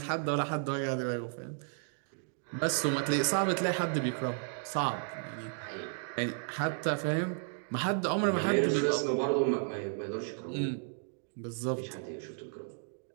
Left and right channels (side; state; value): left; silent; 56 dB below the other